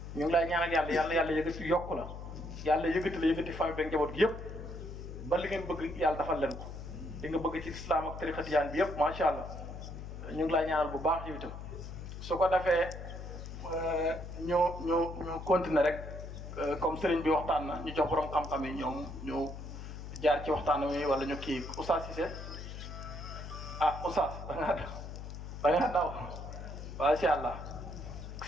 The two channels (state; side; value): noise; left; hum, 9 dB below the sound